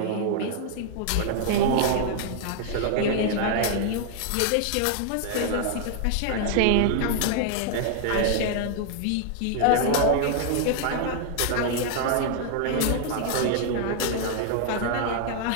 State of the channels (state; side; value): different; both; correlation 0.00